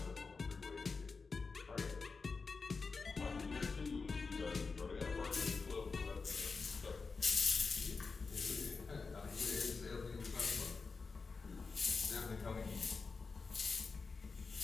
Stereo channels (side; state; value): right; quieter; 4.5 dB